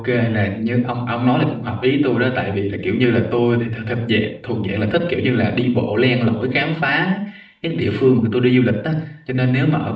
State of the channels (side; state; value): both; identical; correlation 1.00